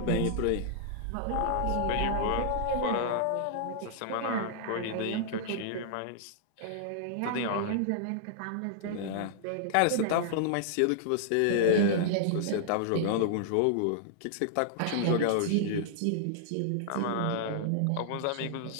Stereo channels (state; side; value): different; both; correlation -0.01